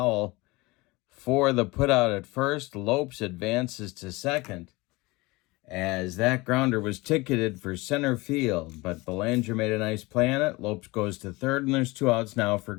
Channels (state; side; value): quieter; right; 23.0 dB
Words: for the putout at first. Lopes advances to second as that grounder was ticketed for center field, but Belanger made a nice play on it. Lopes goes to third, and there's 2 outs now for